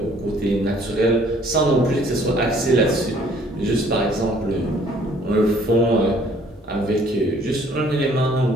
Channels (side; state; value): both; normal; correlation 0.59